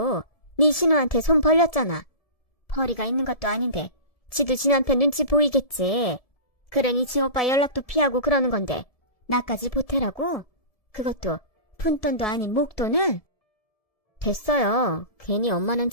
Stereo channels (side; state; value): right; late; 1.7 ms